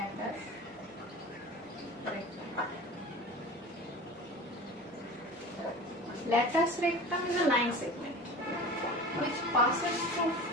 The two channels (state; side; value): normal; both; correlation 0.36